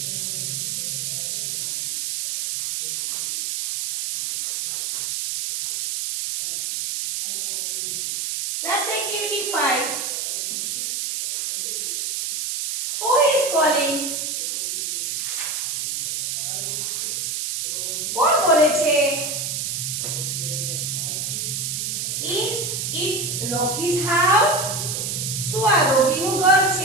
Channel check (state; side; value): noise; right; hiss, 2 dB below the sound